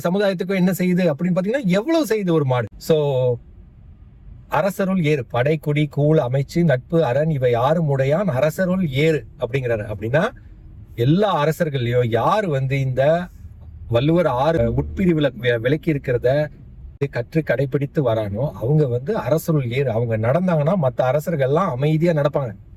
சமுதாயத்துக்கோ என்ன செய்யுது அப்படின்னு பாத்தீங்கன்னா எவ்வளவு செய்யுது ஒரு மாடு. சோ அரசருள் ஏறு, படை குடி கூழ் அமைச்சு நட்பு அரண் இவை யாரும் உடையான் அரசருள் ஏறு அப்படிங்கிறாரு. அப்படின்னா எல்லா அரசர்களையும் யாரு வந்து இந்த வள்ளுவர் 6 உட்பிரிவுல விலக்கி இருக்கிறத கற்று கடைபிடித்து வரானோ அவங்க வந்து அரசருள் ஏறு. அவங்க நடந்தாங்கன்னா மற்ற அரசர்கள் எல்லாம் அமைதியா நடப்பாங்க.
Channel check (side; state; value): both; identical; correlation 1.00